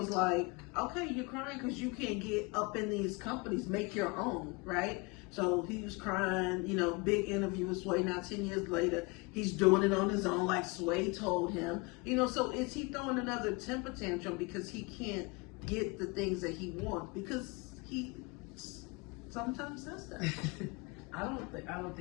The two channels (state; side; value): quieter; right; 27.7 dB